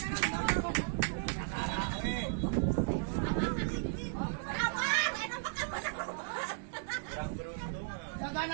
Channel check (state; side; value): silent; left; 54 dB below the other